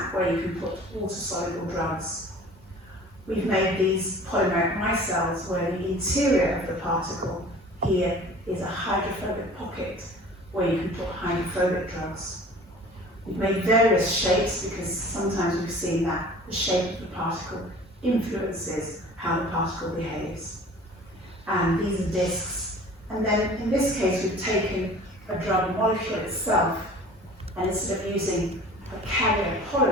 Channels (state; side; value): normal; both; correlation 0.45